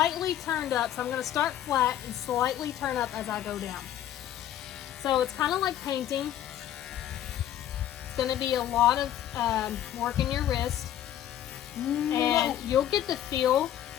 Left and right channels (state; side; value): quieter; right; 11.5 dB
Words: turned up. So I'm going to start flat and slightly turn up as I go down. So it's kind of like painting. It's going to be a lot of work in your wrist. And you'll get the feel